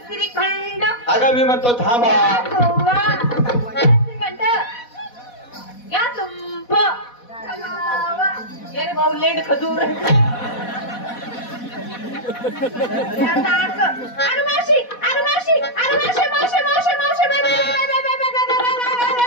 श्रीखंड अगं मी म्हणतो थांबा. या तुंब ये भाऊ लेंड खजूर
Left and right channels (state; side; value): late; right; 4.1 ms